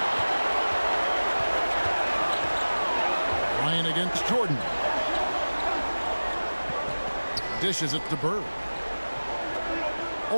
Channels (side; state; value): both; inverted; correlation -1.00